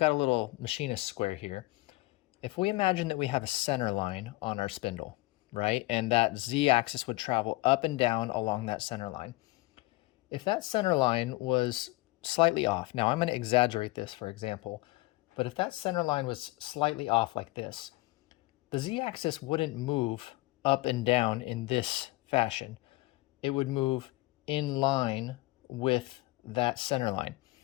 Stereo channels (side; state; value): right; quieter; 20.8 dB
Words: a little machinist square here. If we imagine that we have a center line on our spindle, right? And that Z-axis would travel up and down along that center line. If that center line was slightly off, now I'm going to exaggerate this for example, but if that center line was slightly off like this, the Z-axis wouldn't move up and down in this fashion. It would move in line with that center line.